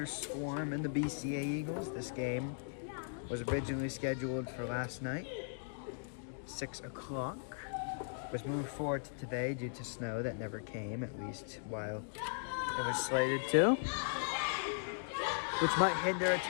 Swarm and the BCA Eagles. This game was originally scheduled for last night, 6 o'clock. Was moved forward to today due to snow that never came, at least while it was slated to, which might hinder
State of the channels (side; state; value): right; silent; digital silence